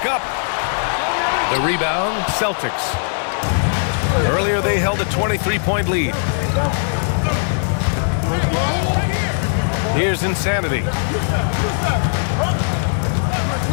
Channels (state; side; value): silent; right; digital silence